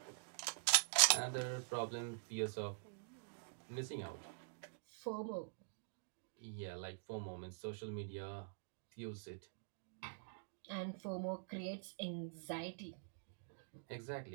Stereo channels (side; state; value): left; silent; digital silence